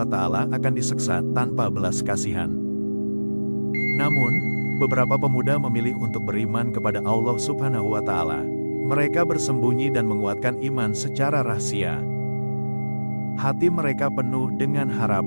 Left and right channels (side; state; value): both; inverted; correlation -1.00